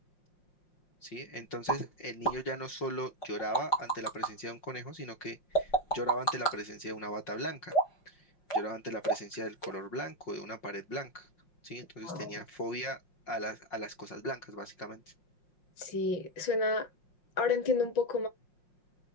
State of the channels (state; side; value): late; right; 5.6 ms